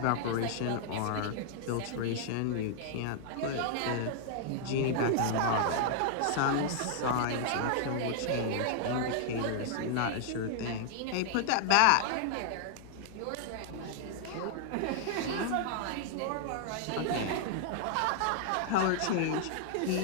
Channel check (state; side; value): different; both; correlation -0.01